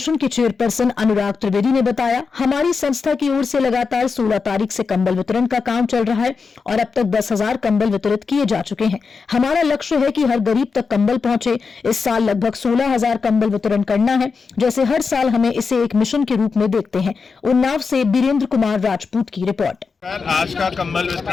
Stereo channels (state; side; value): quieter; right; 5.1 dB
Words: के चेयरपर्सन अनुराग त्रिवेदी ने बताया, हमारी संस्था की ओर से लगातार 16 तारीख से कंबल वितरण का काम चल रहा है और अब तक 10,000 कंबल वितरित किए जा चुके हैं। हमारा लक्ष्य है कि हर गरीब तक कंबल पहुंचे। इस साल लगभग 16,000 कंबल वितरण करना है। जैसे हर साल हमें इसे एक मिशन के रूप में देखते हैं। उन्नाव से बीरेंद्र कुमार राजपूत की रिपोर्ट। आज का कंबल